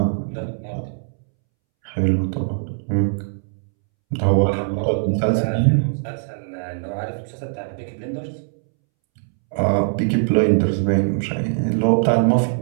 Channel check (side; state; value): left; silent; 65 dB below the other